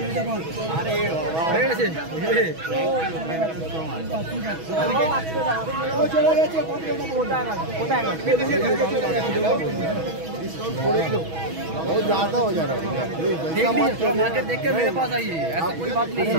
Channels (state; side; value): late; left; 6.2 ms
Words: अरे कैसे बहुत ज्यादा हो जा रहा है मार्केट देख के मेरे पास आइए ऐसा कोई बात नहीं है